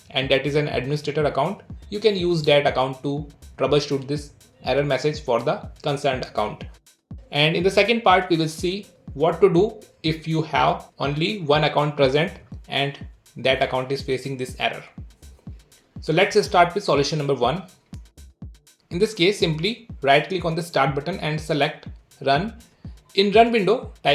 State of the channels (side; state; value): both; identical; correlation 1.00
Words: and that is an administrator account, you can use that account to troubleshoot this error message for the concerned account. And in the second part, we will see what to do if you have only one account present and that account is facing this error. So let's start with solution number 1. In this case, simply right click on the start button and select run. In run window,